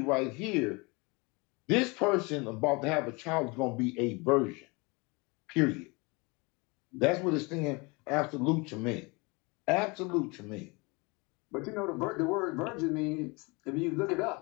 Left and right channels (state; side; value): quieter; right; 27.7 dB